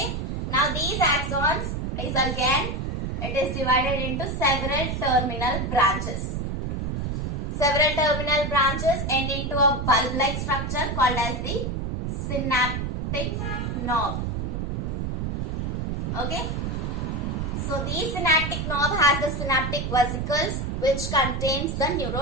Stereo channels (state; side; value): noise; right; rumble, 2 dB below the sound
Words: Now these axons is again, it is divided into several terminal branches. Several terminal branches end into a bulb-like structure called as the synaptic knob. Okay. So the synaptic knob has the synaptic vesicles which contains the